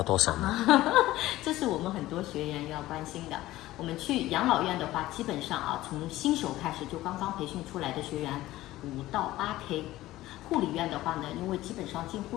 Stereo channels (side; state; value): right; quieter; 16.2 dB